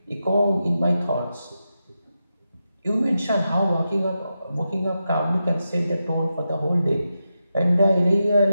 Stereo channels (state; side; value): inverted; both; correlation -0.88